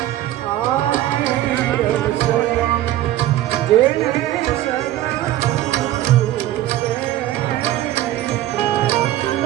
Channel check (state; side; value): quieter; left; 14.1 dB